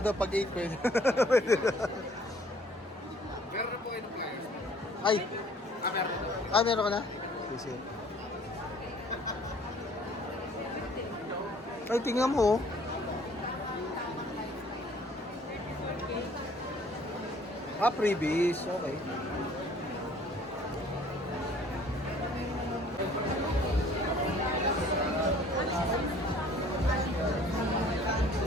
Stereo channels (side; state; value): both; normal; correlation 0.55